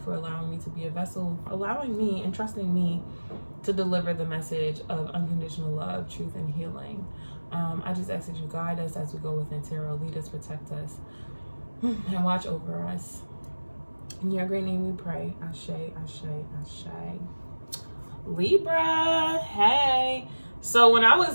for allowing me to be a vessel, allowing me and trusting me to deliver the message of unconditional love, truth, and healing. I just ask that you guide us as we go within tarot, lead us, protect us, and watch over us. In your great name we pray. Ashe, ashe, ashe. Libra, hey. So when I was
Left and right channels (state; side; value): inverted; both; correlation -1.00